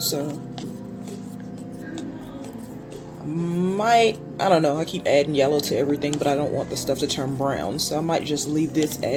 I don't know, I keep adding yellow to everything, but I don't want the stuff to turn brown, so I might just leave this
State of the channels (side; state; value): both; identical; correlation 1.00